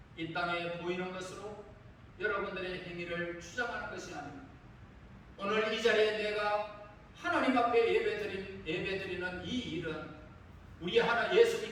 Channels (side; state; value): both; identical; correlation 1.00